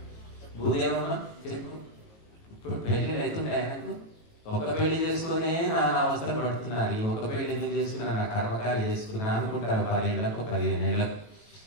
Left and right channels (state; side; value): late; right; 18 ms